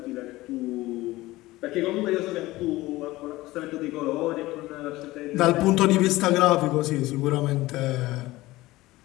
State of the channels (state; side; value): quieter; right; 18.5 dB